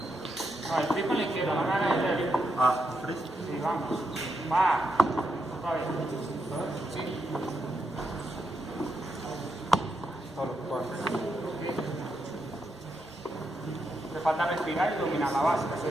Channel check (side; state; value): both; normal; correlation 0.83